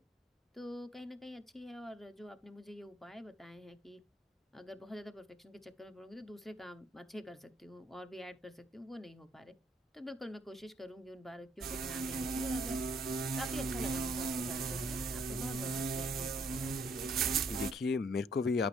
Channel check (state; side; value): normal; both; correlation 0.67